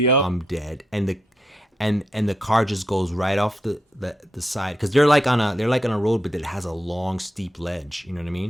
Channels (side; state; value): both; normal; correlation 0.82